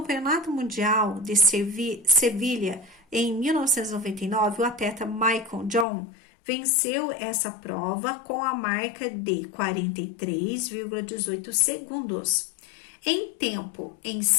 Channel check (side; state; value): right; drops out; at 5.9 s